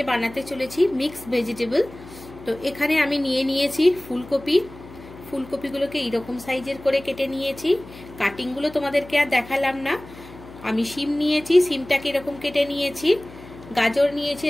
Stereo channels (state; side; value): noise; left; hum, 18 dB below the sound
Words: बानाते चलेछि मिक्स भेजिटेबल। तो एखाने आमी निये नियेछि फुलकपि। फुलकपिगुलोके एरकम साइजेर करे केटे नियेछि। काटिंगगुलो तोमादेरके आर देखालाम ना। आमी शिम नियेछि, शिमटाके एरकम केटे नियेछि। गाजर नियेछि